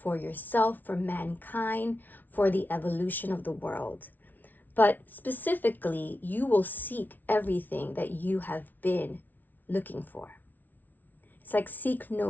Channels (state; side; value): late; right; 0.083 ms